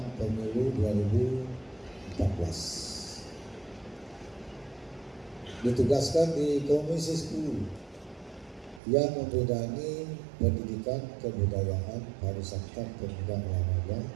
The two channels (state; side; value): drops out; left; at 8.8 s